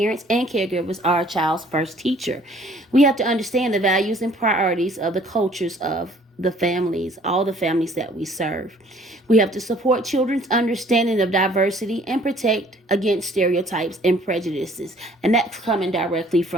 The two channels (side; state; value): both; normal; correlation 0.57